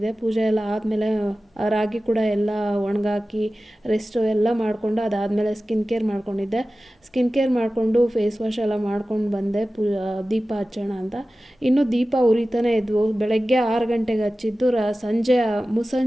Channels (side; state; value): both; normal; correlation 0.96